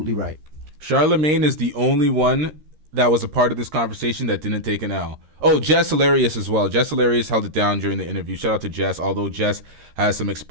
right. Charlemagne is the only one that was a part of this conversation that didn't take an L. Oh, Jess Hilarious as well. Jess Hilarious held it down during the interview. Shout out to Jess, although Jess has some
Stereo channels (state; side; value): late; left; 13 ms